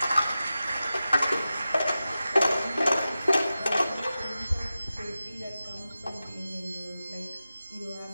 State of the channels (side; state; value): both; inverted; correlation -0.93